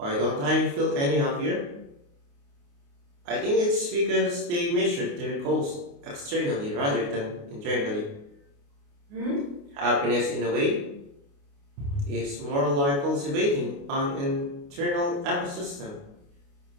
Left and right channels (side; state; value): left; late; 28 ms